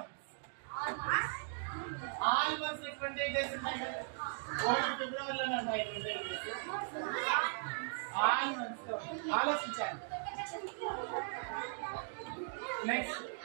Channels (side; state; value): left; silent; digital silence